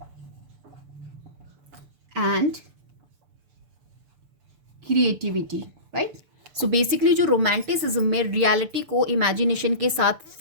and creativity, right. So basically जो romanticism में reality को imagination के साथ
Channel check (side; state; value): left; late; 6.8 ms